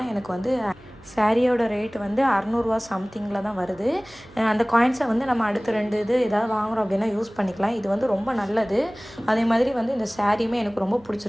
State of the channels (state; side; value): noise; right; hum, 26 dB below the sound